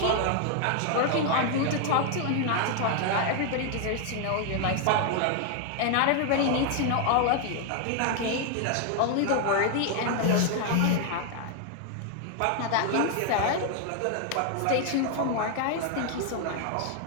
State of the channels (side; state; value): both; different; correlation 0.00